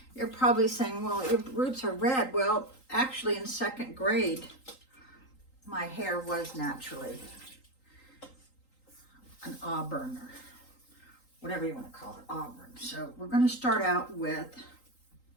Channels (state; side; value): late; right; 3.8 ms